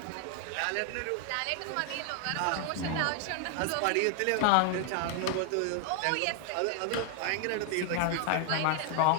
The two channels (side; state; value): both; different; correlation 0.00